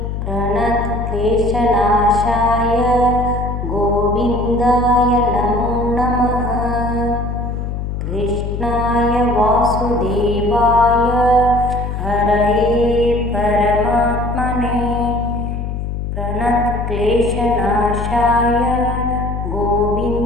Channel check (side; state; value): left; noise; hum, 4 dB below the sound